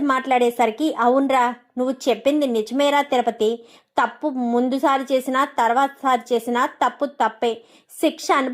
మాట్లాడేసరికి అవునరా నువ్వు చెప్పింది నిజమేరా తిరుపతి, తప్పు ముందుసారి చేసినా తర్వాత సారి చేసినా తప్పు తప్పే, శిక్ష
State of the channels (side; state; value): both; identical; correlation 1.00